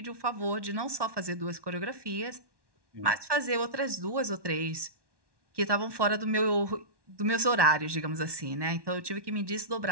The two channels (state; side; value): late; left; 1.1 ms